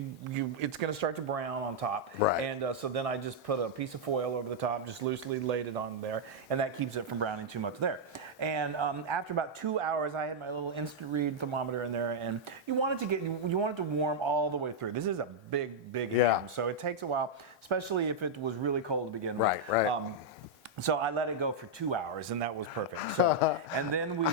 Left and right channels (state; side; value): normal; both; correlation -0.04